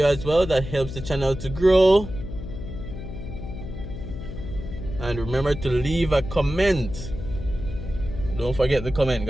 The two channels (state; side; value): noise; left; hum, 9 dB below the sound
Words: as well. That helps the channel to grow. And remember to leave a comment. Don't forget the comment,